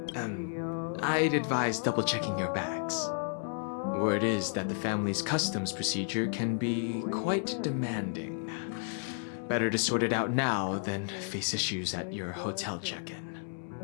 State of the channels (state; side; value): silent; right; 56 dB below the other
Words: I'd advise double-checking your bags. Word is that the family's customs procedure can be quite demanding. Better to sort it out now than face issues at your hotel check-in.